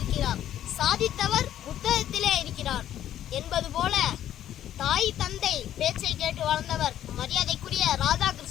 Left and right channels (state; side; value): quieter; right; 11.4 dB